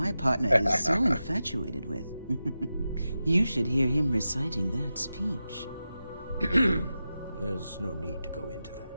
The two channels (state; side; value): inverted; both; correlation -0.92